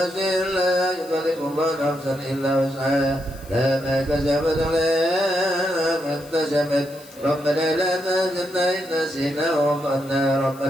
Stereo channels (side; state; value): left; noise; hiss, 22 dB below the sound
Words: لا يكلف الله نفسا إلا وسعها لا ما كسبت عليها ما اكتسبت ربنا لا تحزننا إن نسينا وأخطأنا